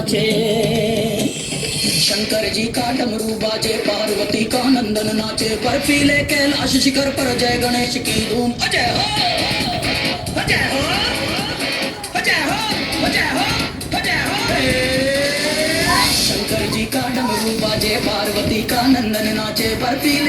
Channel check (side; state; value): both; identical; correlation 1.00